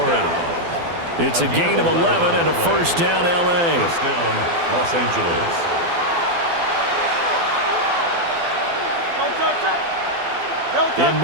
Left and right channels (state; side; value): late; left; 12 ms